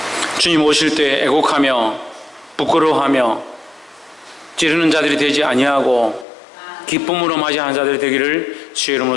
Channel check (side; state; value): right; drops out; at 6.2 s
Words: 주님 오실 때 애곡하며 부끄러워하며 찌르는 자들이 되지 아니하고 기쁨으로 맞이하는 자들이 되기를 주의